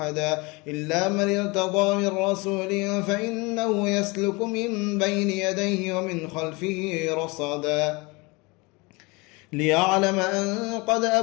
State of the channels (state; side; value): quieter; right; 26.0 dB